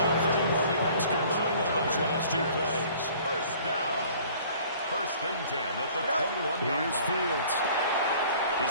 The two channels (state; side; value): inverted; both; correlation -0.51